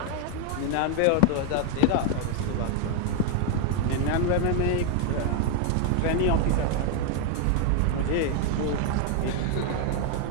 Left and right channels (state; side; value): different; both; correlation 0.00